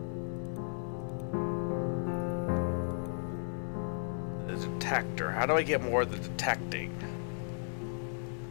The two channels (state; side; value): silent; right; digital silence